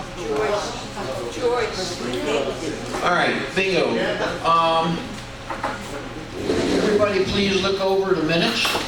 All right, bingo. Everybody please look over the minutes.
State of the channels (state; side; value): identical; both; correlation 1.00